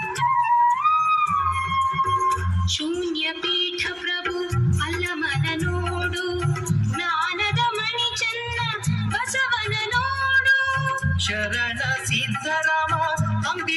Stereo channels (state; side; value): identical; both; correlation 1.00